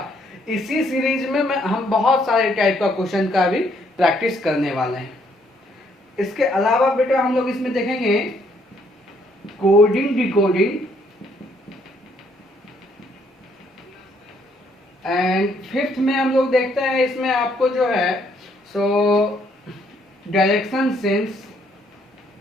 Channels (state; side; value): normal; both; correlation 0.68